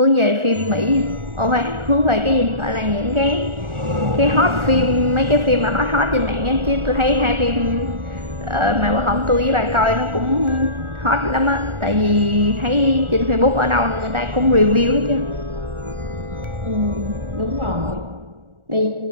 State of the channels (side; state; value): left; late; 1.4 ms